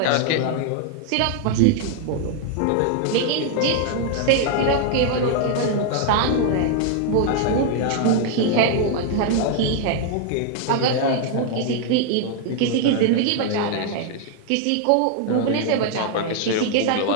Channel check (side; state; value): both; different; correlation 0.00